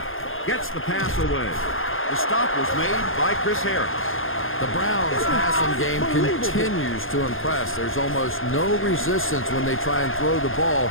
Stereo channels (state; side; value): late; right; 0.59 ms